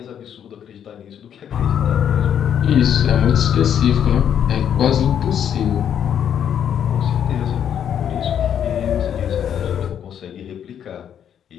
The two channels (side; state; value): right; quieter; 9.1 dB